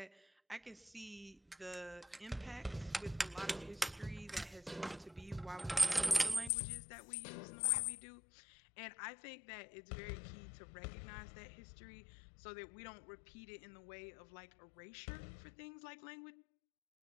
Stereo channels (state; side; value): drops out; right; at 6.5 s